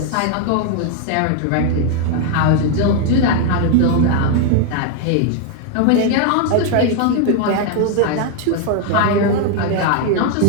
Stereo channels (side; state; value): both; different; correlation 0.00